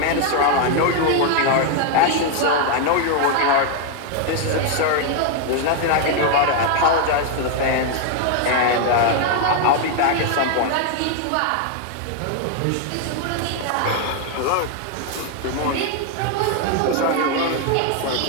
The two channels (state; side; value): different; both; correlation 0.00